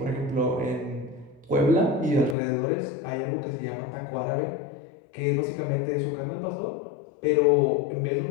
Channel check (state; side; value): drops out; right; at 2.4 s